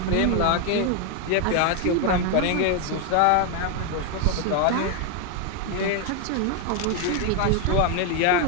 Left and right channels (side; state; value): both; different; correlation 0.01